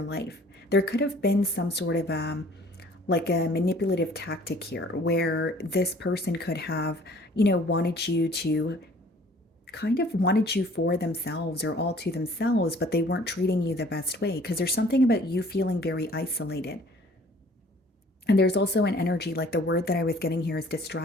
life. There could have been some sort of like a manipulative tactic here, where this person could have wanted you to kind of wanted you for themselves, or all to themselves, but they weren't treating you the best way, because there's something about you feeling very isolated. And there's also an energy, like the word that I was getting here is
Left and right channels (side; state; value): both; normal; correlation 0.54